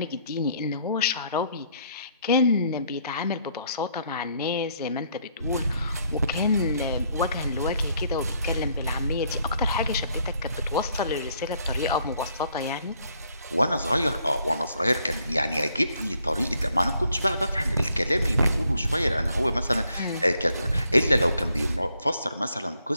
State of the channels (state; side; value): inverted; both; correlation -0.69